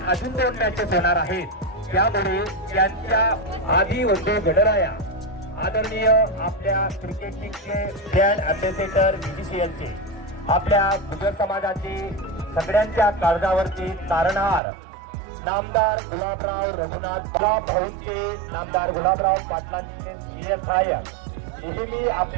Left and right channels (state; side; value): drops out; left; at 14.6 s